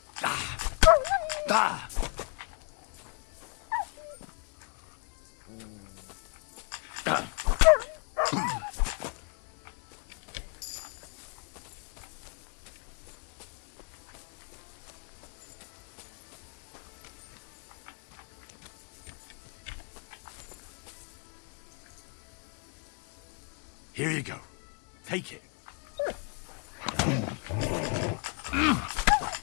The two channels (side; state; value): right; quieter; 37.3 dB